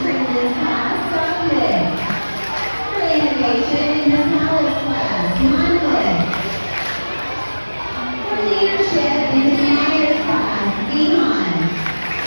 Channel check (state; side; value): inverted; both; correlation -1.00